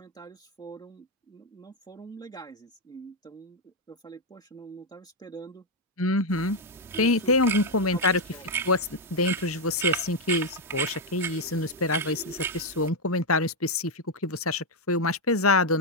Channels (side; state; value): both; normal; correlation 0.02